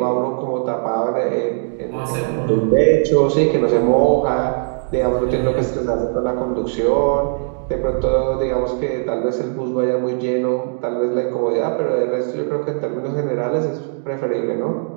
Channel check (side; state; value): left; silent; digital silence